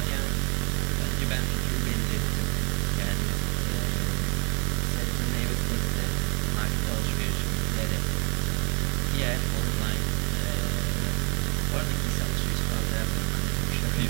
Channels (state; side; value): quieter; left; 31.3 dB